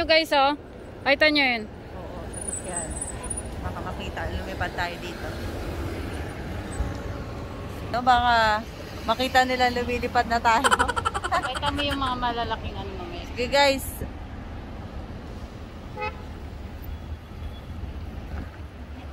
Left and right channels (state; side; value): identical; both; correlation 1.00